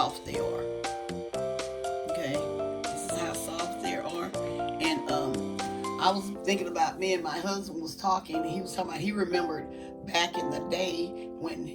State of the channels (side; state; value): both; identical; correlation 1.00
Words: they are. Okay, this is how soft they are. And I was thinking about, me and my husband was talking, and he was talking about he remembered back in the day when